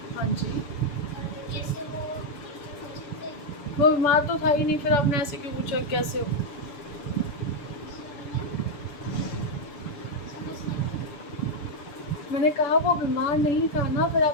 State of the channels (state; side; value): late; right; 7.0 ms